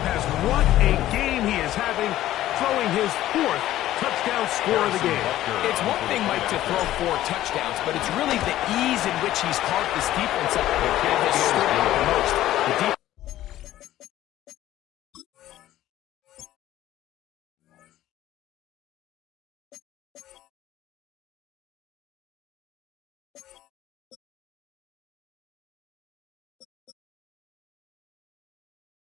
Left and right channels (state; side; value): quieter; right; 13.9 dB